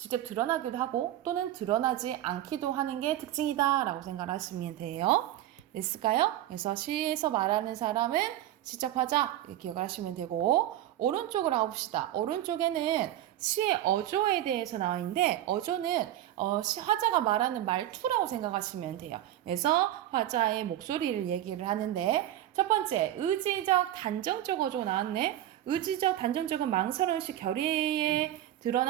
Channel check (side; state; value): left; quieter; 13.1 dB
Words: 드러나기도 하고 또는 드러나지 않기도 하는 게 특징이다 라고 생각하시면 돼요. 됐을까요? 그래서 시에서 말하는 사람은 시적 화자 이렇게 기억을 하시면 되고 오른쪽으로 가봅시다. 오른쪽에는 시의 어조에 대해서 나와 있는데 어조는 화자가 말하는 말투라고 생각하시면 돼요. 그래서 화자의 목소리를 얘기를 하는데 첫 번째 의지적 단정적 어조 나왔네. 의지적 단정적은 망설임없이 결의에